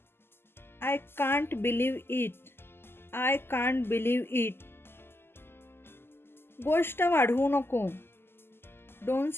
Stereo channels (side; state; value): right; late; 0.11 ms